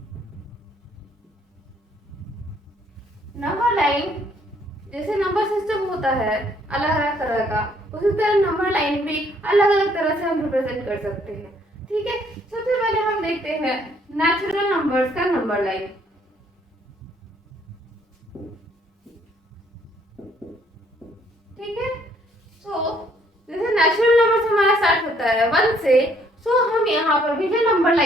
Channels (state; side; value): normal; both; correlation 0.65